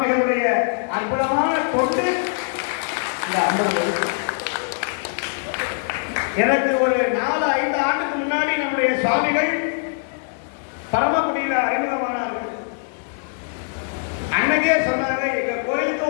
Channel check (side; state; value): right; silent; digital silence